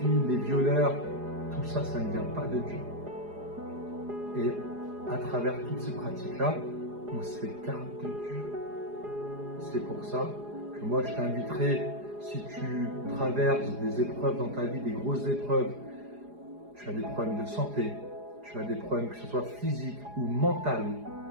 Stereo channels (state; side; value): late; left; 4.8 ms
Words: les violeurs, tout ça, ça ne vient pas de Dieu. Et à travers toutes ces pratiques-là, on s'écarte de Dieu. C'est pour ça que moi je t'inviterai, si tu traverses des épreuves dans ta vie, des grosses épreuves, tu as des problèmes de santé, tu as des problèmes que ce soit physiques ou mentaux,